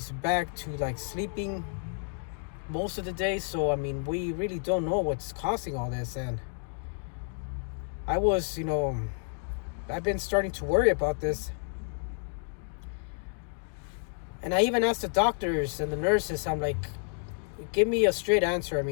back to like sleeping most of the day. So I mean, we really don't know what's causing all this. And I was, I've been starting to worry about this. And I even asked the doctors and the nurses, I'm like, give me a straight answer. I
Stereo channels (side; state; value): right; silent; 58 dB below the other